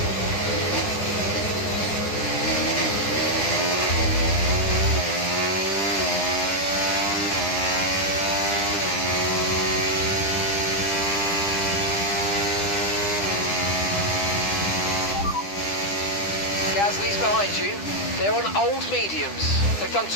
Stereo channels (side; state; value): right; late; 10 ms